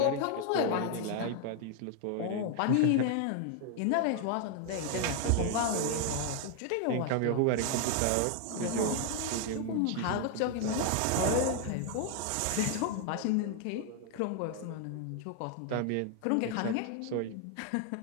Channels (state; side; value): different; both; correlation 0.00